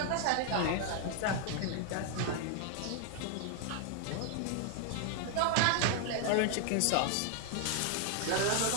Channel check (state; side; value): different; both; correlation 0.00